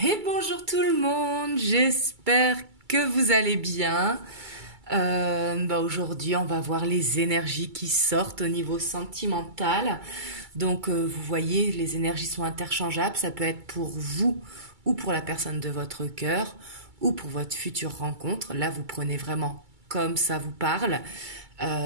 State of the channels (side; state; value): left; late; 2.3 ms